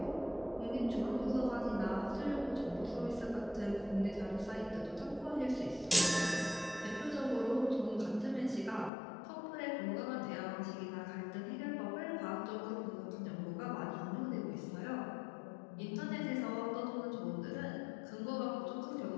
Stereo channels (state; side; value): drops out; right; at 8.9 s